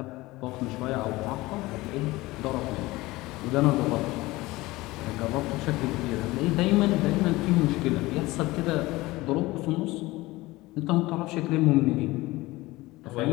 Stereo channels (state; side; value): quieter; right; 19.9 dB